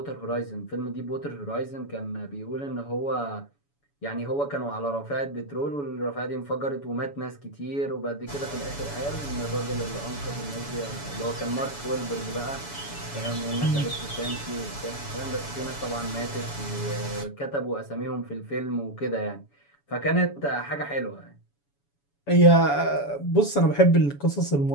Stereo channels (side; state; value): right; late; 7.0 ms